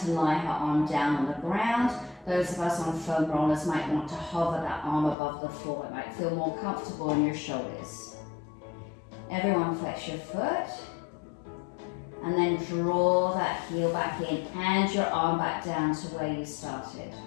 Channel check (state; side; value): drops out; right; at 5.2 s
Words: to lie her arm down on the ground. Those of us on foam rollers might want to hover that arm above the floor. It might feel more comfortable in your shoulders. Everyone flex your foot. And then draw that heel back in and your arm back down to where you started.